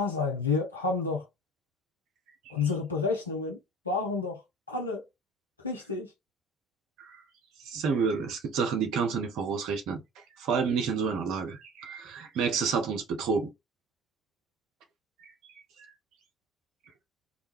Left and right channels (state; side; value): normal; both; correlation 0.40